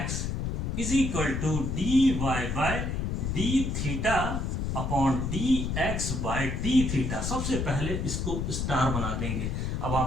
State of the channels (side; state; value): left; noise; rumble, 1 dB below the sound